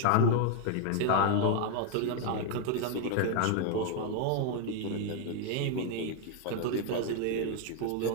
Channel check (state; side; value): different; both; correlation 0.00